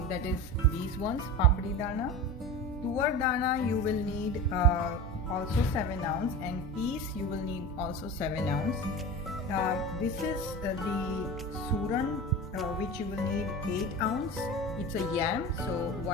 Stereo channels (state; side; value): normal; both; correlation 0.29